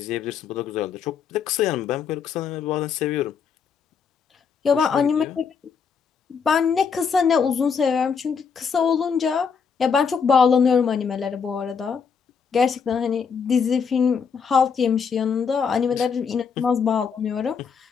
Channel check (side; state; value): right; quieter; 6.2 dB